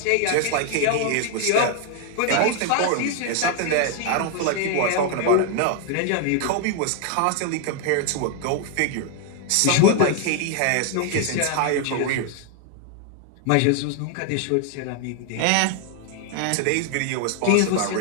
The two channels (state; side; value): different; both; correlation 0.00